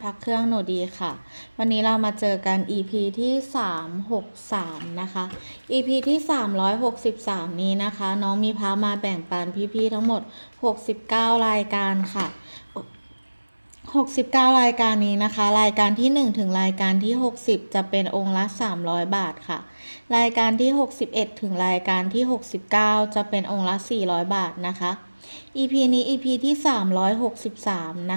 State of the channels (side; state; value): both; inverted; correlation -1.00